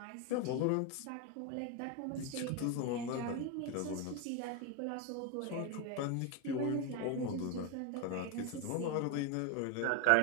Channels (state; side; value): different; both; correlation 0.02